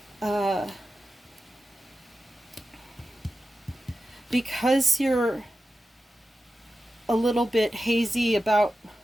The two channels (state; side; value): normal; both; correlation 0.92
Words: Because you're a little bit hazy about